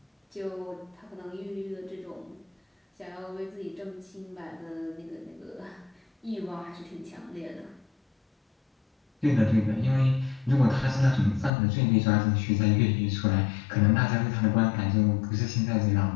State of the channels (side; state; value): right; drops out; at 11.5 s